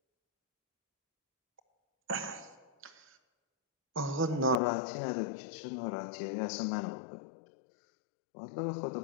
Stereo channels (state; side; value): drops out; right; at 4.6 s